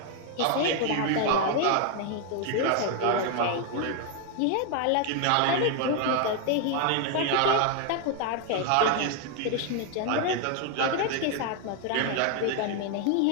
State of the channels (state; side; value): different; both; correlation 0.01